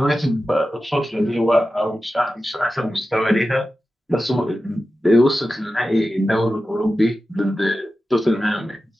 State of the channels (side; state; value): both; normal; correlation 0.93